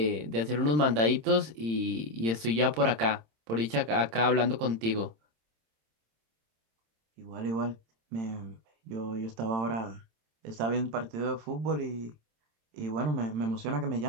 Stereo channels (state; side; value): late; left; 26 ms